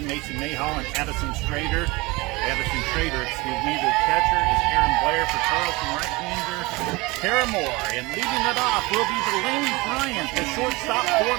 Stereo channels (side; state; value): left; quieter; 23.5 dB